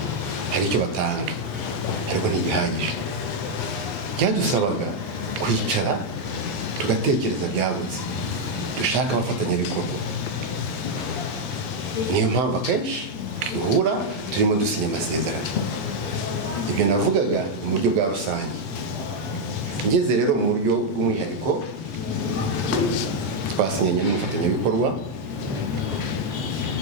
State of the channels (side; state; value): both; normal; correlation 0.01